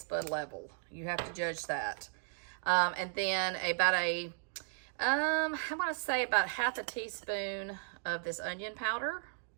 bud level. You have to judge that. And then about I want to say about half a teaspoon of this onion powder.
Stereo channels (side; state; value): left; silent; digital silence